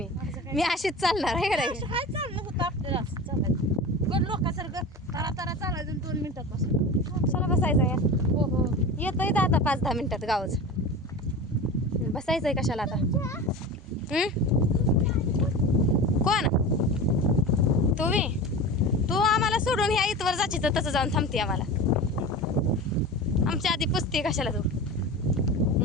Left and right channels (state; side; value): normal; both; correlation 0.31